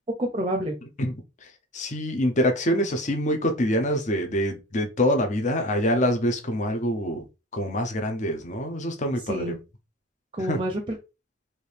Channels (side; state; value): both; normal; correlation 0.36